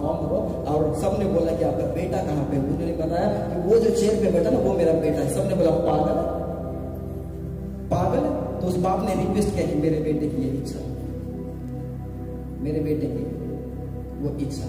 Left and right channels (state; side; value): identical; both; correlation 1.00